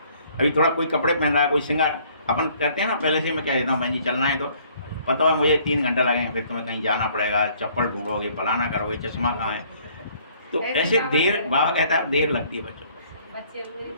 अभी थोड़ा कोई कपड़े पहन रहा है, कोई श्रृंगार, अपन कहते हैं ना पहले से मैं कह देता हूँ बहन जी चलना है तो पता है मुझे 3 घंटा लगेंगे, फिर तुम्हें कहीं जाना पड़ेगा, चप्पल ढूंढोगे, फलाना करोगे, चश्मा कहाँ है। तो ऐसे देर, बाबा कहता है देर लगती है बच्चों को। बच्चे पूरी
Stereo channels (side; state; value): both; inverted; correlation -0.60